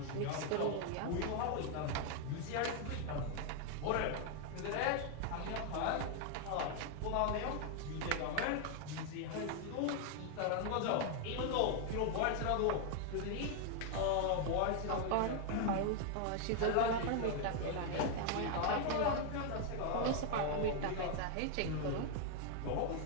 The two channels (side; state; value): both; different; correlation 0.00